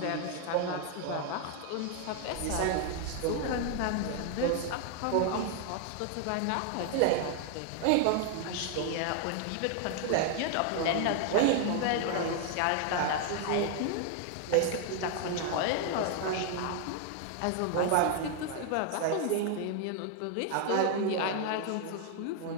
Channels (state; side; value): different; both; correlation 0.00